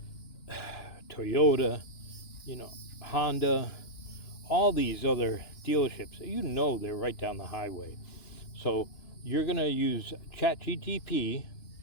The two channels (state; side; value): late; right; 2.9 ms